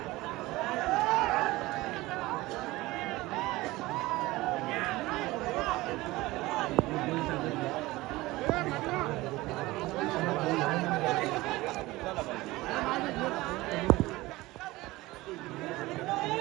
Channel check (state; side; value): quieter; left; 19.6 dB